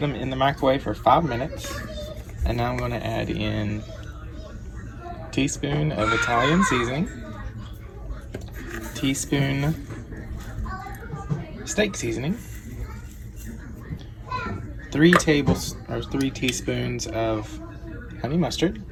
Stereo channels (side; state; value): both; identical; correlation 1.00